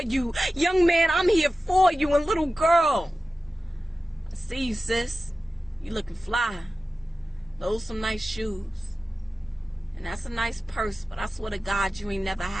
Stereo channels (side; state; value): both; normal; correlation 0.95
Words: you. Young man, I'm here for you. And little girl, I see you, sis. You looking fly. Those some nice shoes. And that's a nice purse, but I swear to God you ain't never